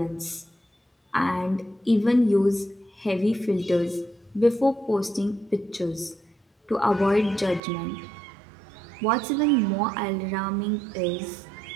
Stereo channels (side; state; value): left; drops out; at 7.6 s